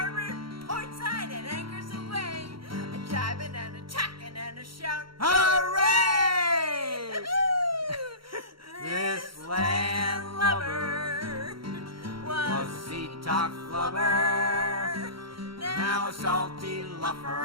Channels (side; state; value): left; late; 0.74 ms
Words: port side, and anchors away. A jibing and a tacking and a shout. Hooray! This land lover was a sea talk flubber, now a salty